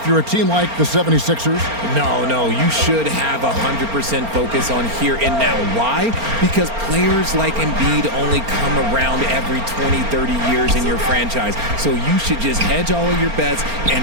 you're a team like the 76ers? No, you should have 100% focus on here and now. Why? Because players like Embiid only come around every 20, 30 years in your franchise. So you should just hedge all of your bets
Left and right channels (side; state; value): left; late; 4.4 ms